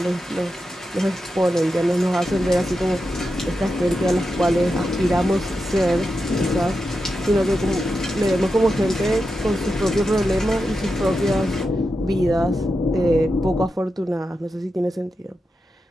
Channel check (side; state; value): both; normal; correlation 0.89